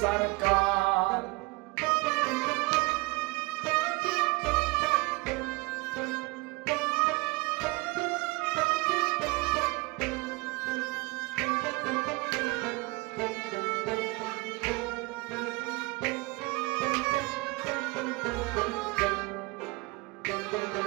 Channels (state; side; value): quieter; left; 24.5 dB